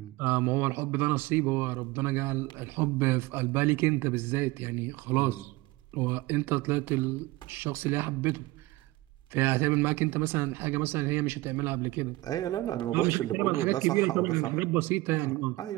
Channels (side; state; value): left; quieter; 20.0 dB